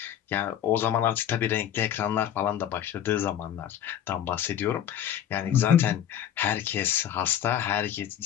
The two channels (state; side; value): quieter; right; 10.3 dB